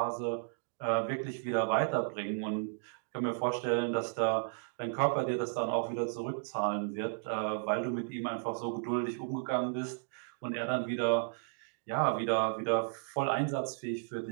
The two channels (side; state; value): left; silent; digital silence